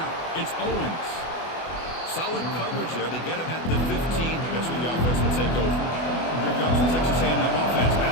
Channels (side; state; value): right; late; 24 ms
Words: it's Owens. Solid coverage there. They get him at the 15. That's where the offense will take over. Here comes the Texas A&M offense